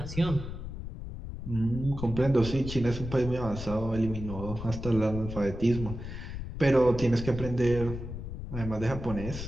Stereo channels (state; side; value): noise; left; rumble, 8 dB below the sound